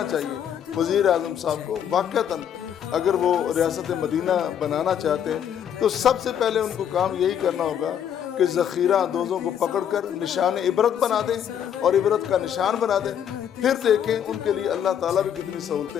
चाहिए। वज़ीर आज़म साहब को वाक़तन अगर वो रियासत मदीना बनाना चाहते हैं तो सबसे पहले उनको काम यही करना होगा कि ज़ख़ीरा अंदोज़ों को पकड़कर निशान इबरत बना दें और इबरत का निशान बना दें। फिर देखें उनके लिए अल्लाह ताला भी कितनी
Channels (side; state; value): right; quieter; 9.0 dB